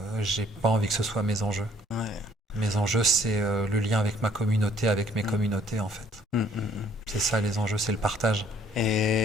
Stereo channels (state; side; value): normal; both; correlation 0.61